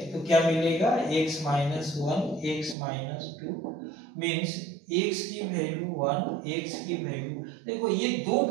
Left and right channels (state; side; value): drops out; left; at 2.8 s